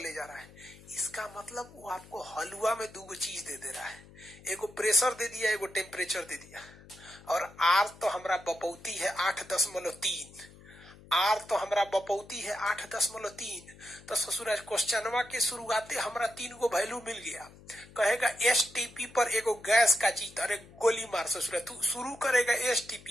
जा रहा है। इसका मतलब वो आपको हलवा में दो चीज दे दे रहा है, एगो प्रेशर दे दिया, एगो टेम्परेचर दे दिया। और आर तो हमारा बपौती है 8.3, आर तो हमारा बपौती है 8.3। तो ससुराज क्वेश्चनवा के शुरुआते हमारा 3 वैल्यू मिल गया। कहेगा एसटीपी पर एगो गैस का चीज, अरे गोली मार ससुराज, तू शुरू करेगा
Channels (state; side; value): noise; left; hum, 21 dB below the sound